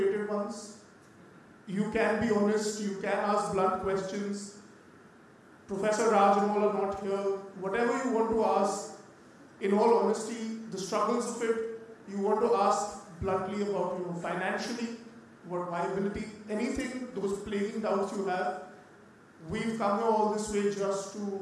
ones. You can be honest, you can ask blunt questions. Professor Raj and all are not here. Whatever you want to ask, in all honesty, the struggles of it, you want to ask bluntly about, financially, what viability, anything, those plaguing doubts you have. We've come here all this way just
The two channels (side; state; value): both; identical; correlation 1.00